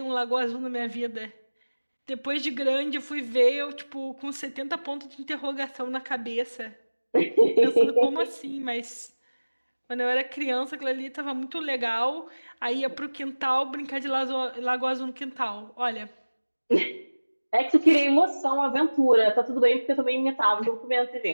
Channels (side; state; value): both; inverted; correlation -1.00